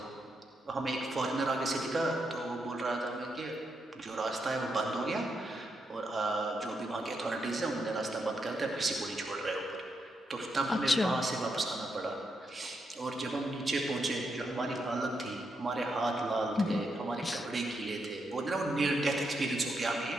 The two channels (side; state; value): both; normal; correlation 0.82